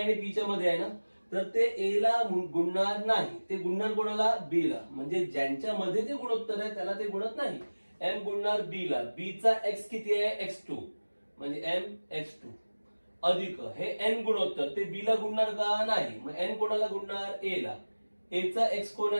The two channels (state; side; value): inverted; both; correlation -1.00